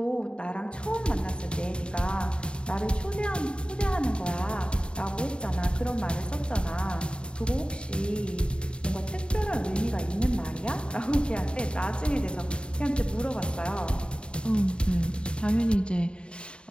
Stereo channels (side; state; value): right; late; 0.053 ms